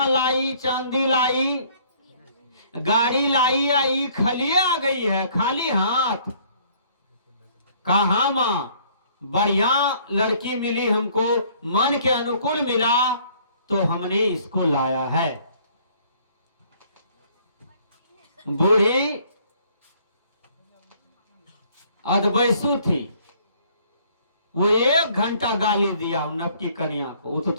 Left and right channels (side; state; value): both; inverted; correlation -0.60